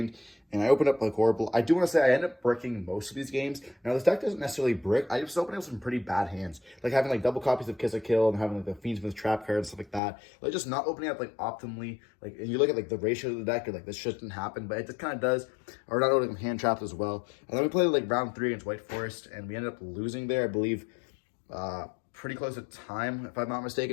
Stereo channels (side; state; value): right; drops out; at 10.0 s